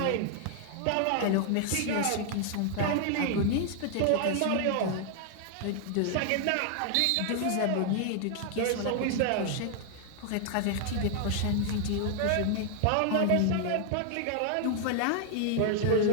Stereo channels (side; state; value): both; different; correlation 0.00